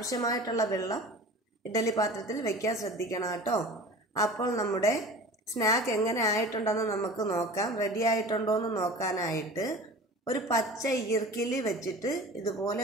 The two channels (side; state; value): both; normal; correlation 0.39